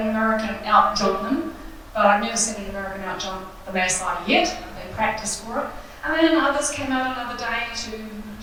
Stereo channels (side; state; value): both; identical; correlation 1.00